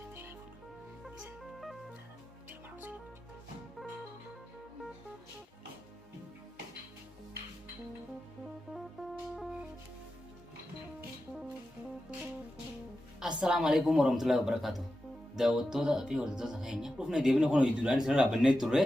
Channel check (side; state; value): both; normal; correlation 0.91